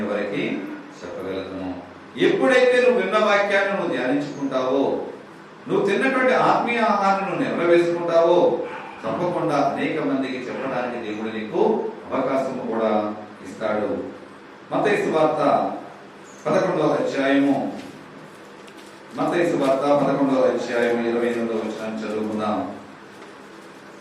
ఎవరికి చెప్పగలుగుతాను? ఎప్పుడైతే నువ్వు విన్న వాక్యాన్ని నువ్వు ధ్యానించుకుంటావో, నువ్వు తిన్నటువంటి ఆత్మీయ ఆహారాన్ని నువ్వు నెరవేర్చుకుంటావో, తప్పకుండా అనేక మందికి చెప్పడానికి దేవుడు నీకు అవకాశం కూడా ఇస్తాడు. మత్తయి సువార్త 11వ అధ్యాయము, మత్తయి సువార్త 11వ అధ్యాయము 28వ వచనం చదువుకుందాం.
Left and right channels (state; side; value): identical; both; correlation 1.00